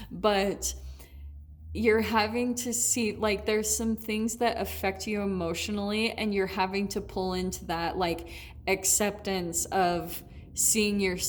But you're having to see, like, there's some things that affect you emotionally, and you're having to pull into that, like, acceptance of seeing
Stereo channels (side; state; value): both; identical; correlation 1.00